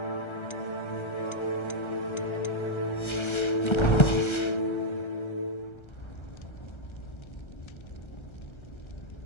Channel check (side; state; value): right; late; 1.3 ms